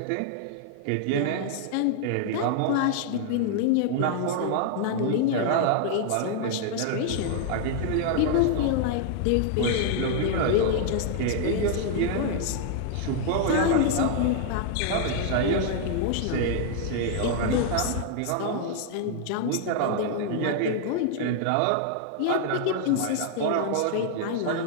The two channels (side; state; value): both; different; correlation 0.00